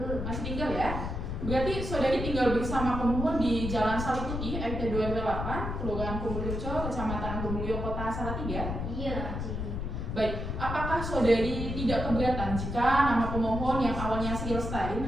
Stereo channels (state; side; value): noise; left; rumble, 4 dB below the sound